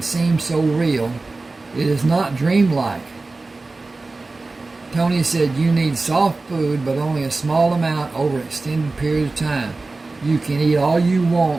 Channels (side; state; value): left; quieter; 3.4 dB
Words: seem so real. It is not dreamlike." Tony said, "You need soft food, but only a small amount over an extended period of time. You can eat all you